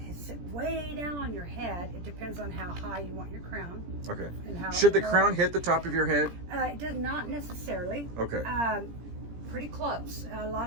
sit way down on your head, it depends on how high you want your crown. Okay. And how Should the low. crown hit the top of your head? It does not necessarily. Okay. Pretty close. A lot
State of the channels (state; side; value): late; left; 17 ms